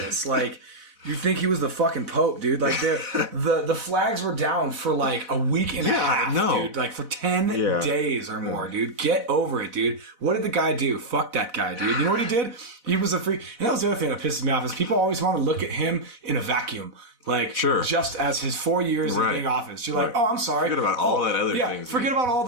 Like, you think he was the fucking Pope, dude. Like, the flags were down for like a week and a half, dude. Like, for 10 days or more, dude. Get over it, dude. What did the guy do? Fuck that guy, dude. You know what he did? He was a freak. And that was the other thing that pisses me off is people always want to look at him in a vacuum. Like, just as his 4 years of being office. You're like, oh, I'm sorry. Forget about all that other things. Forget about all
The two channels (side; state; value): left; late; 4.0 ms